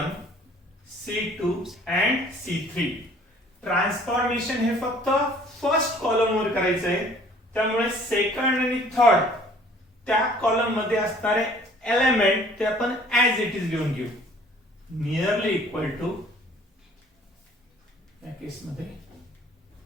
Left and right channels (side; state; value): both; normal; correlation 0.54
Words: C2 and C3. Transformation हे फक्त फर्स्ट कॉलम वर करायचंय. त्यामुळे सेकंड आणि थर्ड त्या कॉलम मध्ये असणारे एलिमेंट ते आपण ऍज इट इज लिहून घेऊ. नियरली इक्वल टू या केस मध्ये